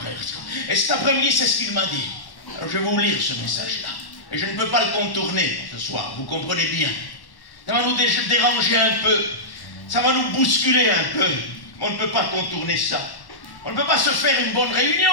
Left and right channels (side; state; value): right; late; 1.1 ms